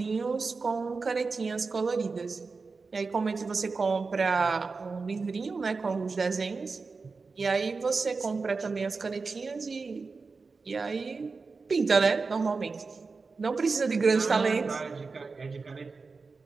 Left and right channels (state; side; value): quieter; left; 4.4 dB